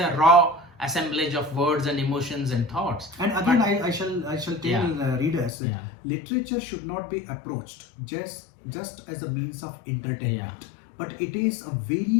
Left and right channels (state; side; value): drops out; right; at 5.5 s